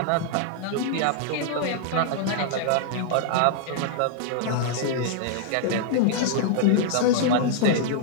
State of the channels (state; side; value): different; both; correlation -0.01